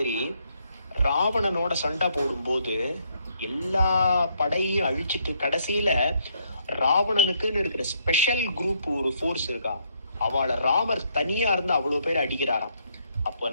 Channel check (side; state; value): both; inverted; correlation -0.71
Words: ராவணனோட சண்டை போடும்போது எல்லா படையும் அழிச்சிட்டு கடைசியில ராவணனுக்குன்னு இருக்கிற ஸ்பெஷல் குரூப் ஒரு ஃபோர்ஸ் இருக்கா, அவளை ராமர் தனியா இருந்து அவ்வளவு பேர் அடிக்கிறாராம். அப்ப